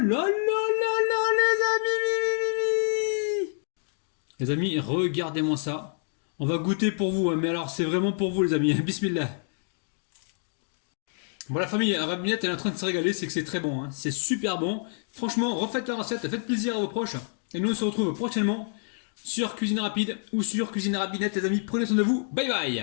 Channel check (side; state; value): right; silent; 60 dB below the other